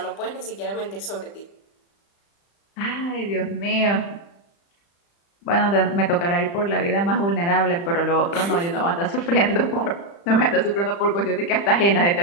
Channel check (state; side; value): late; right; 35 ms